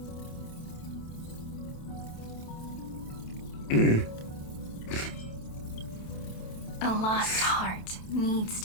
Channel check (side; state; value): right; late; 27 ms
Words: A lost heart needs